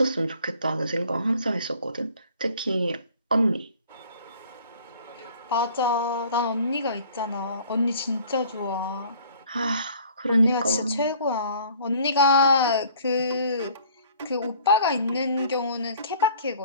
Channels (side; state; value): both; inverted; correlation -0.53